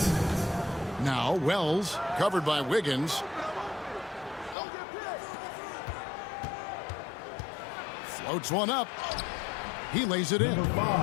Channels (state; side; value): drops out; right; at 4.5 s